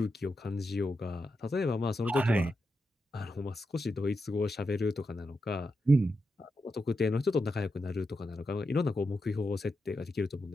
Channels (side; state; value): both; normal; correlation 0.87